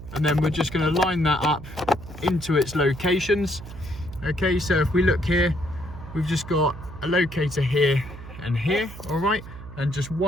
and then we're just going to line that up into its locations. Okay, so if we look here, we've just got a locator here and here. All right, and just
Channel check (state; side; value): noise; right; hum, 14 dB below the sound